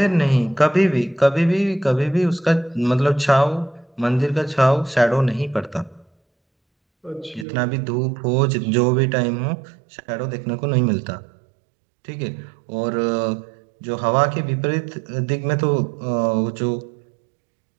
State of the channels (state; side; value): drops out; left; at 7.5 s